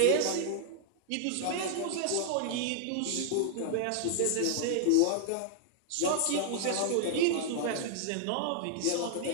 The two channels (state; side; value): different; both; correlation -0.01